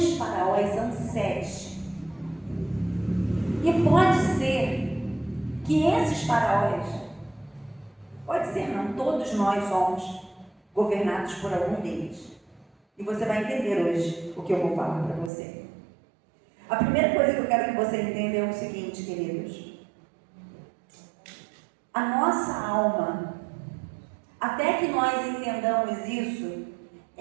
faraós são 7. E pode ser que esses faraós, pode ser não, todos nós somos governados por algum deles. E você vai entender hoje o que eu vou falar para você. A primeira coisa que eu quero que você entenda é o seguinte, queridos. A nossa alma, até que nós entendamos isso,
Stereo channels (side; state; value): left; drops out; at 15.3 s